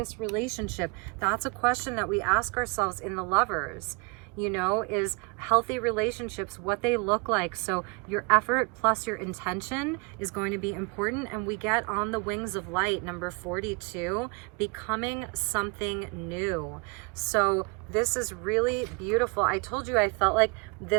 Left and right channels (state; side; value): quieter; left; 30.0 dB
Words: relationship? That's a question that we ask ourselves in the Lovers. You know, is healthy relationships, what they look like. So your effort plus your intention is going to be important. And we get on the wings of light, number 42, becoming something new. So this is really beautiful. I told you I felt like